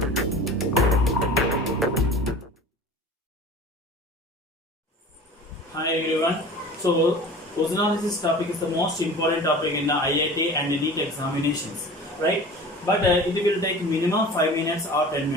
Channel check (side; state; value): both; normal; correlation 0.39